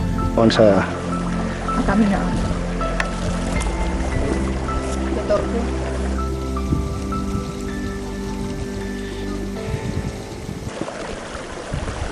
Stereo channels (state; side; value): identical; both; correlation 1.00